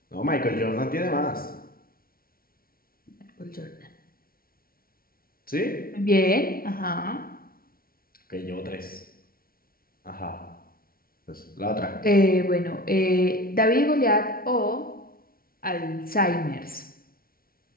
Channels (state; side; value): late; right; 0.43 ms